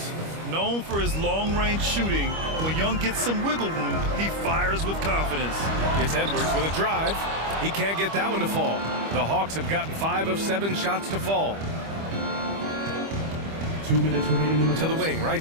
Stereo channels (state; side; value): late; left; 25 ms